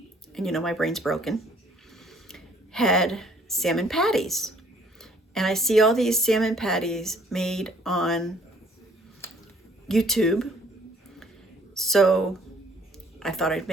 and you know my brain's broken, had salmon patties. And I see all these salmon patties made on YouTube. So I thought I'd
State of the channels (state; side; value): normal; both; correlation 0.60